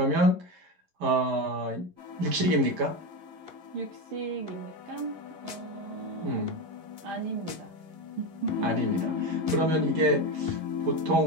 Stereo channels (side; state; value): left; late; 11 ms